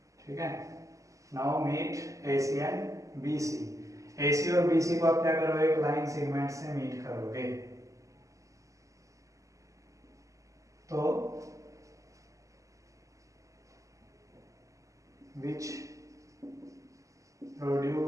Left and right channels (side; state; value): left; late; 0.16 ms